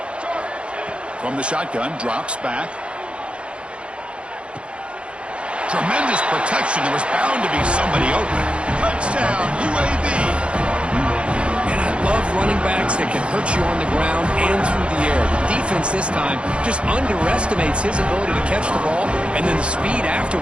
From the shotgun, drops back. Tremendous protection. There was bound to be somebody open. Touchdown, UAB. And I love running backs that can hurt you on the ground and through the air. The defense this time just underestimates his ability to catch the ball, and then the speed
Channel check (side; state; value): left; late; 0.058 ms